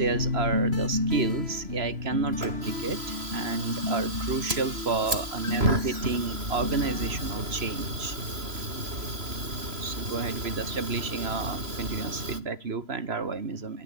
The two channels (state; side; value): late; left; 3.0 ms